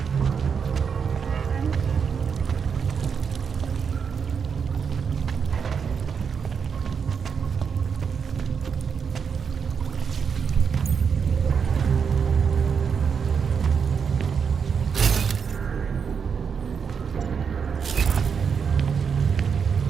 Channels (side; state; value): left; quieter; 6.4 dB